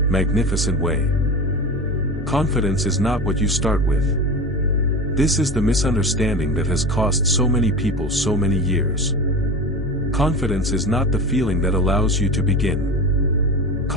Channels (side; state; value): both; normal; correlation 0.29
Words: magnificent way. Confidence is not what you start with. This is the misunderstanding that has cost so many people so many years. Confidence is not the feeling that allows you to begin.